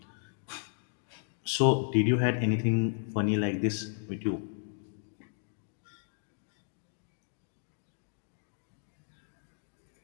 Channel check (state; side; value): silent; right; digital silence